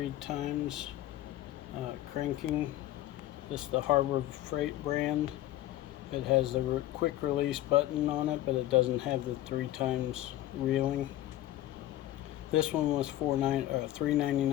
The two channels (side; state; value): right; quieter; 14.6 dB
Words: cranking. This is the Harbor Freight brand. It has the quick release button on it, but it doesn't have the 3x reeling. This one was